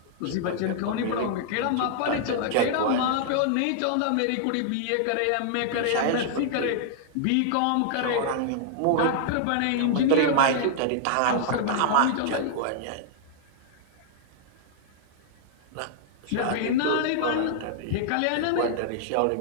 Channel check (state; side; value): different; both; correlation -0.01